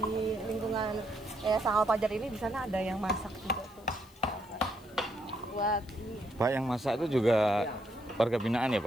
di lingkungan Yayasan Al-Fajar ini. Di sana ada yang masak juga tuh. Buat ini. Pak, yang masak itu juga warga binaan ya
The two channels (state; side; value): noise; left; hiss, 27 dB below the sound